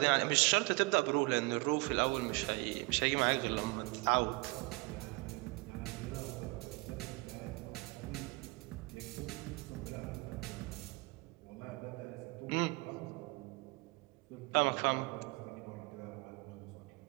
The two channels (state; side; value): quieter; left; 26.2 dB